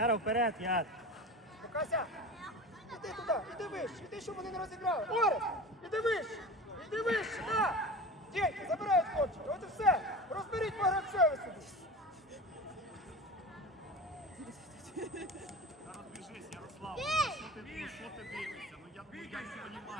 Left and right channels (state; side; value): normal; both; correlation 0.32